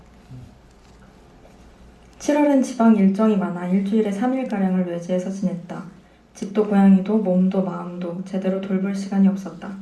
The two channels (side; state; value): both; identical; correlation 1.00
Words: 7월엔 지방 일정이 많아 일주일에 3일가량을 외지에서 지냈다. 집도 고양이도 몸도 마음도 제대로 돌볼 시간이 없었다.